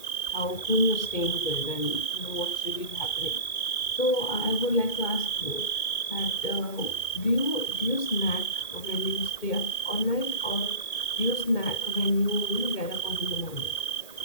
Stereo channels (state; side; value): late; right; 2.4 ms